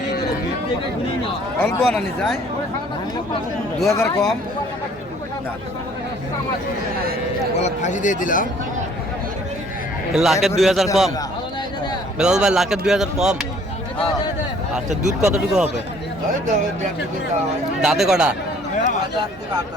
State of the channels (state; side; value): normal; both; correlation 0.57